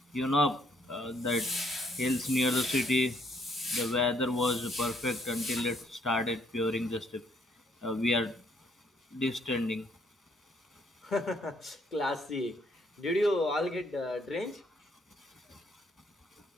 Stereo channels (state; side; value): normal; both; correlation 0.69